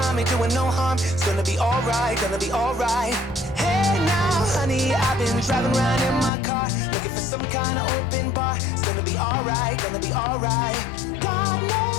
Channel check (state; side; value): drops out; right; at 6.3 s